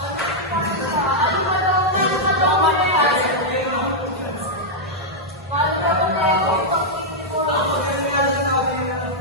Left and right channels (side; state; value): both; normal; correlation -0.05